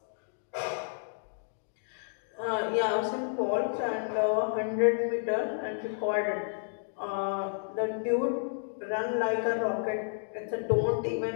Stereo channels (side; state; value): right; silent; digital silence